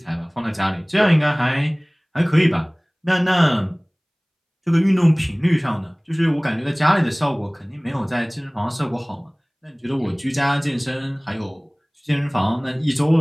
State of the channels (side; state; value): both; identical; correlation 1.00